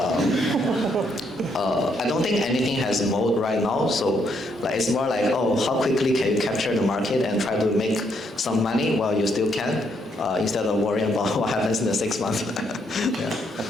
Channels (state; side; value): normal; both; correlation 0.74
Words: I don't think anything has mode right now, so like it's more like, oh, how quickly can you capture the market and try to make some money while you still can, instead of worrying about what happens in the 6 months. Yeah.